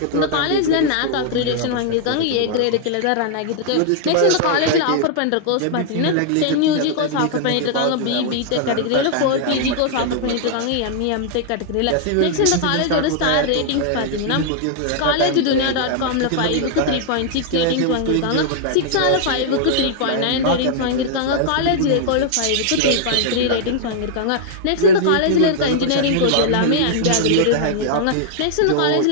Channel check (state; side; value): different; both; correlation -0.01